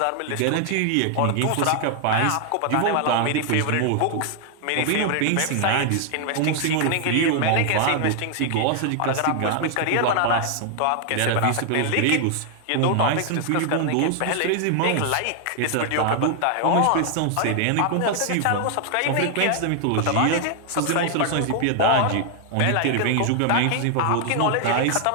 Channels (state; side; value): different; both; correlation 0.00